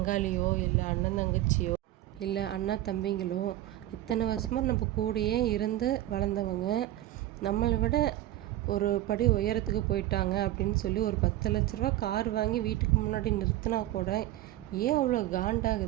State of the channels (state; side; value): quieter; left; 14.5 dB